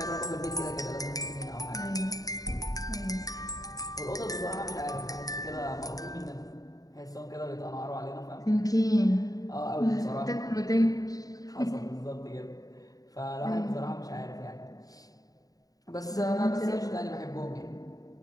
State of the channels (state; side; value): late; right; 0.18 ms